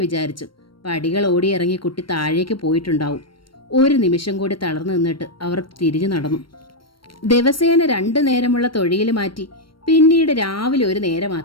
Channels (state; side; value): late; right; 0.73 ms